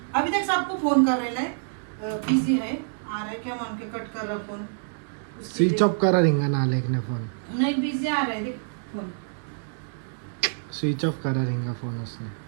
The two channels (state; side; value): silent; left; digital silence